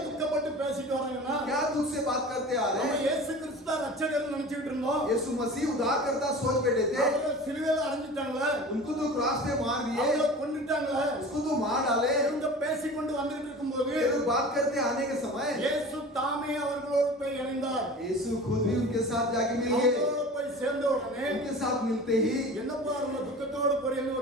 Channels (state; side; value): normal; both; correlation 0.38